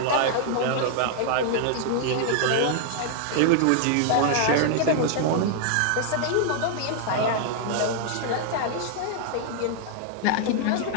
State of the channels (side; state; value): both; different; correlation 0.00